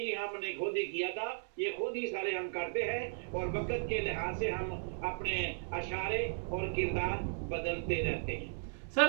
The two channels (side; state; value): left; silent; 54 dB below the other